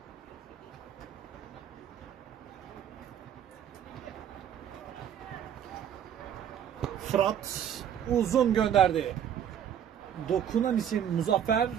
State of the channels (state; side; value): quieter; left; 9.3 dB